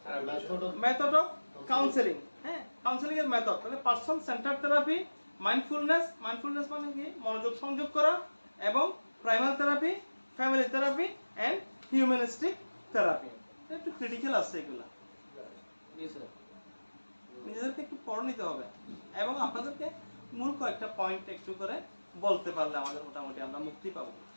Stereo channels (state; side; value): inverted; both; correlation -1.00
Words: therapy, method of counselling. হ্যাঁ, কাউন্সেলিং এর মেথড। তাহলে পারসন সেন্টার্ড থেরাপি, মাইন্ডফুলনেস মানে কি মনোযোগ সংযোগ করা, এবং primal therapy, family therapy and humanistic therapy. একটু ক্রিটিক্যাল আছে এগুলা, নিজেদেরকে একটু পড়ে নিতে হবে, এবং আপনাদেরকে মূল কয়েকটা পয়েন্ট একটু করে বলতে পারলে আমাদের মোটামুটি আমরা মুক্তি পাবো।